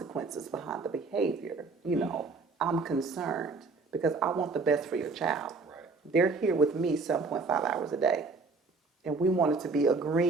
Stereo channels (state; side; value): quieter; left; 4.0 dB